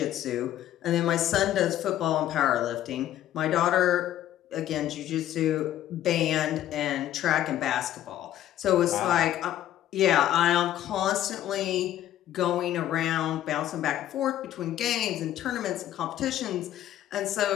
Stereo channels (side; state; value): right; quieter; 12.4 dB